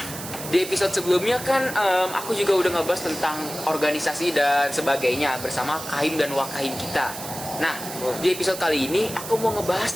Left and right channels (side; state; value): right; noise; hiss, 10 dB below the sound